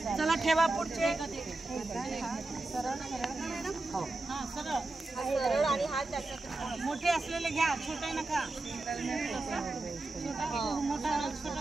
ठेवा पुढचे. मोठे असलेले घ्या, छोटे नका.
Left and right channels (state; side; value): quieter; left; 3.1 dB